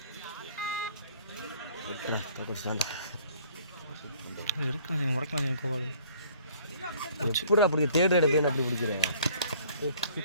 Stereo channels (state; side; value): inverted; both; correlation -0.56